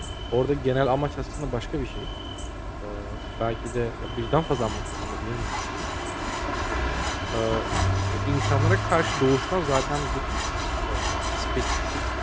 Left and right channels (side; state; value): both; identical; correlation 1.00